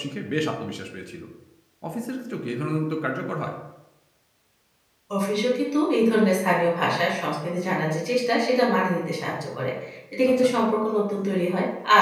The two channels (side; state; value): both; identical; correlation 1.00